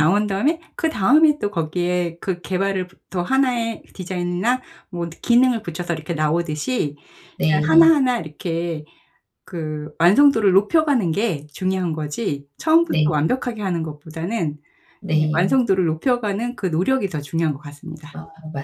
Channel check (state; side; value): identical; both; correlation 1.00